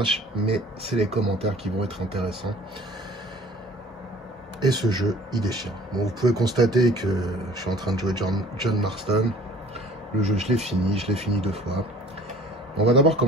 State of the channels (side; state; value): both; normal; correlation 0.49